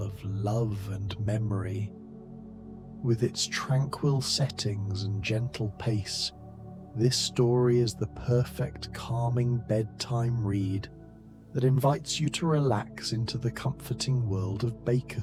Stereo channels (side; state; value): both; identical; correlation 1.00